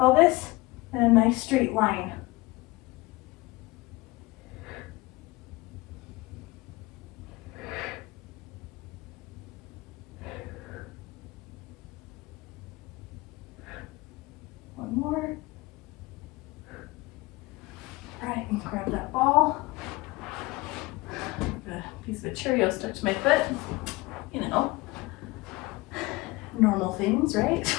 in a nice straight line. One more. Cheerio stuck to my foot. You know, normal things, right?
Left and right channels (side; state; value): right; quieter; 21.7 dB